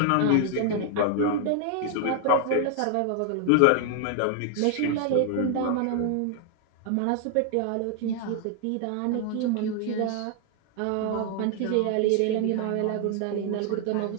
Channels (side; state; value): both; different; correlation 0.00